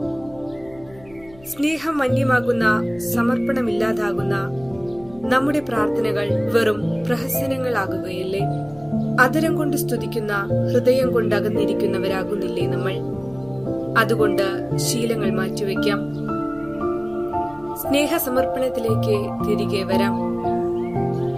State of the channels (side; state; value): left; noise; hum, 24 dB below the sound